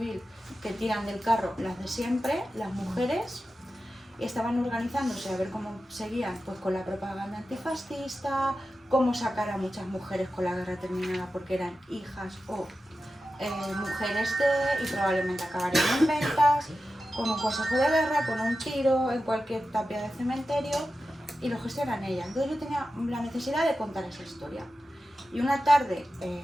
que tiran del carro las de siempre, las mujeres, y estaban organizándose a ver cómo seguían, pues con la propaganda antifascista, cómo sacar a muchas mujeres con la guerra terminada porque eran hijas o mujeres y probablemente acabarían en ventas, con un consejo de guerra, con un tiro, en cualquier tapia de cementerio, y lo gestionan ellas. Entonces yo tenía la necesidad de contar esa historia. Y una tarde,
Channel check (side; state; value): both; normal; correlation 0.92